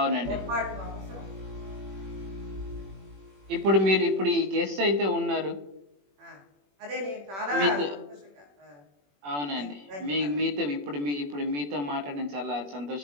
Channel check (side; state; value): left; late; 21 ms